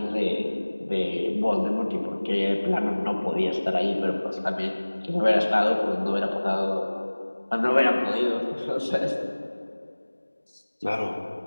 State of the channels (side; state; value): both; inverted; correlation -1.00